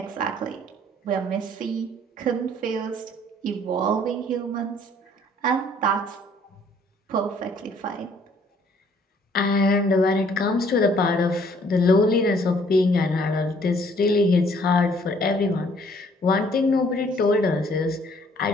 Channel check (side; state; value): both; normal; correlation 0.61